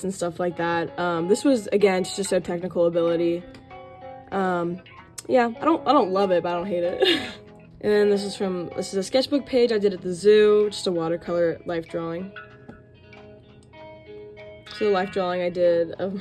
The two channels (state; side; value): identical; both; correlation 1.00